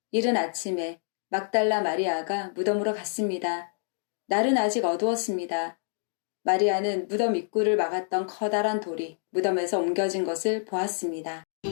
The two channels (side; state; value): right; silent; digital silence